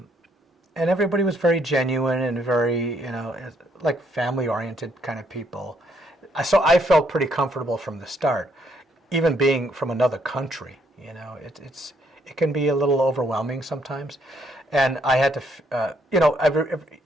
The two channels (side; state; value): both; normal; correlation 0.71